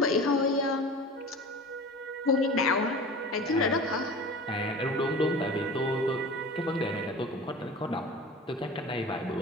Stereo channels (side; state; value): both; normal; correlation 0.36